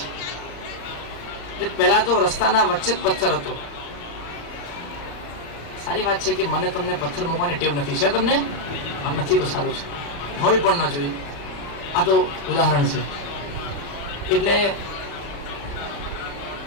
એટલે પહેલા તો રસ્તાના વચ્ચે જ પથ્થર હતો. સારી વાત છે કે મને તમને પથ્થર મૂકવાની ટેવ નથી. છે તમને? નથી તો સારું છે, હોય પણ ન જોઈએ. આ તો ઉદાહરણ છે. એટલે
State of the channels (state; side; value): late; right; 35 ms